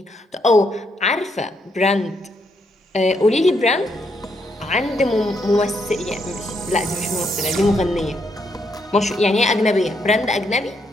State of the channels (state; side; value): normal; both; correlation 0.76